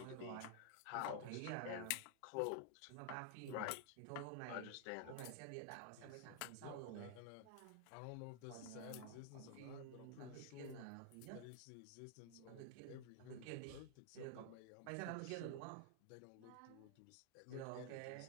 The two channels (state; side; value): different; both; correlation 0.00